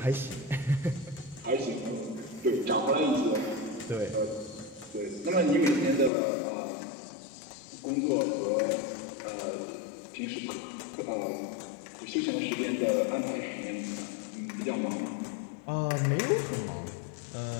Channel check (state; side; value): drops out; right; at 6.1 s